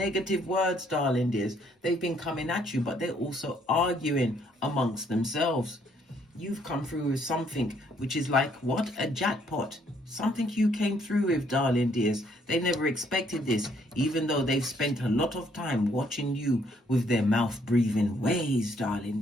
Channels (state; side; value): normal; both; correlation 0.67